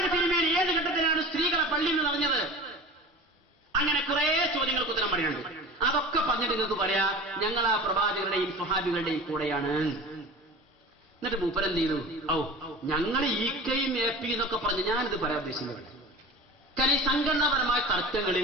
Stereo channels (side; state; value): both; normal; correlation 0.36